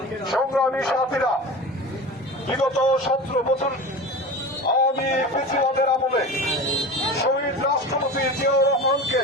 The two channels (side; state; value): both; normal; correlation 0.32